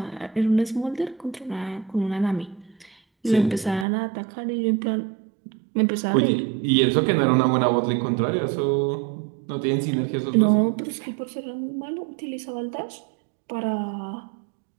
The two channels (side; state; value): left; drops out; at 3.9 s